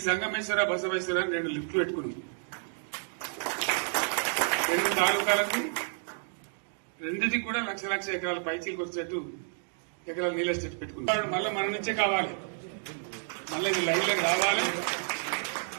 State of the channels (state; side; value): silent; left; 58 dB below the other